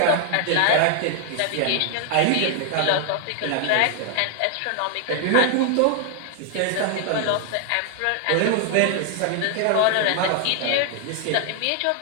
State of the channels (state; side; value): different; both; correlation 0.00